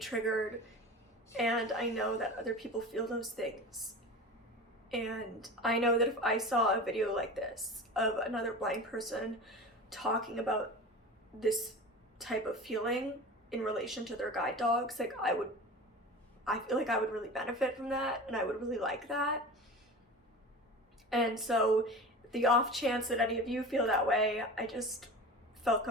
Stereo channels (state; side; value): normal; both; correlation 0.33